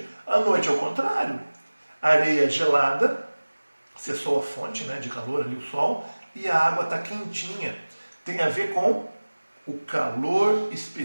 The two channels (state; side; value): inverted; both; correlation -1.00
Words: À noite é o contrário. A areia é gelada, cessou a fonte, né, de calor ali, o sol, e a água está quentinha. Tem a ver com o calor